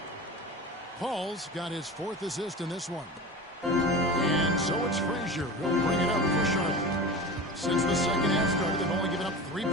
Paul's got his 4th assist in this one. And so it's Frazier who'll bring it up for Charlotte. Since the second half started, they've only given up 3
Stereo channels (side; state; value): both; normal; correlation 0.31